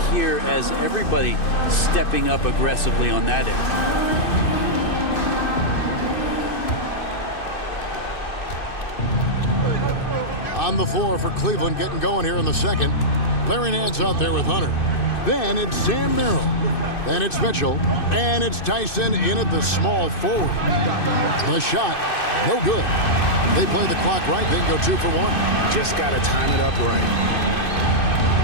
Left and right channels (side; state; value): right; late; 2.6 ms